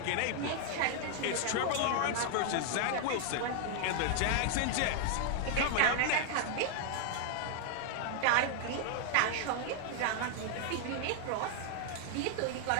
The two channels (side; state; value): both; different; correlation 0.00